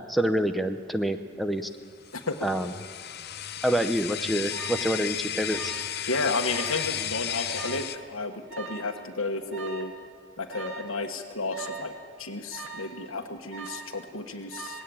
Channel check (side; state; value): both; normal; correlation 0.36